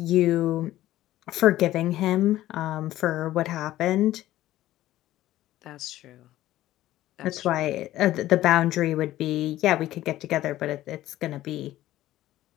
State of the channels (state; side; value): quieter; right; 14.6 dB